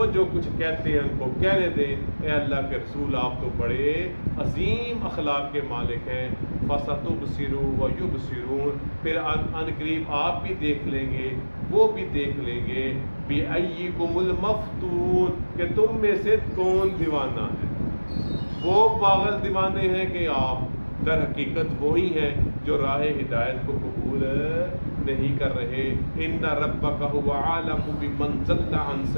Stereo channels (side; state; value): both; inverted; correlation -1.00